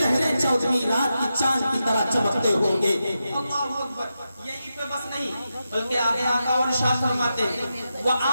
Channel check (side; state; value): both; inverted; correlation -0.89